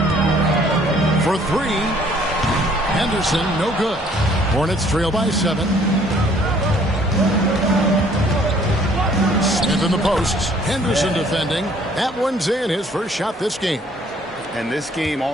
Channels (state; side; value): normal; both; correlation 0.60